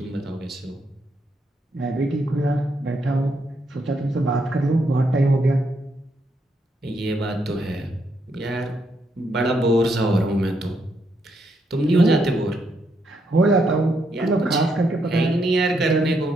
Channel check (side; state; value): both; normal; correlation 0.77